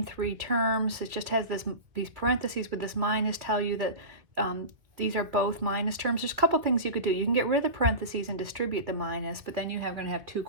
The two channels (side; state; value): left; late; 2.4 ms